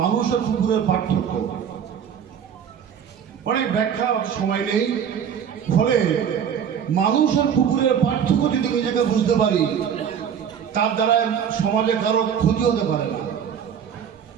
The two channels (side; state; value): left; quieter; 8.1 dB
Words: আর কুকুরের পার্থক্য অনেক ব্যাখ্যা সময় নেই। ফলে মানুষ আর কুকুরের পার্থক্য যদি নিজেকে বুঝতে পারি, তার দ্বারা সমাজে কারো ক্ষতি হতে পারে না।